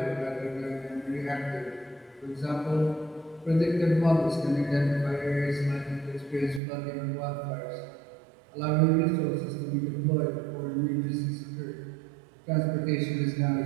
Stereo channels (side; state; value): left; drops out; at 6.6 s